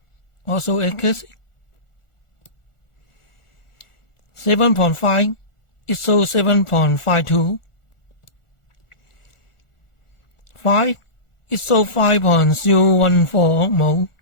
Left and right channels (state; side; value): late; right; 1.4 ms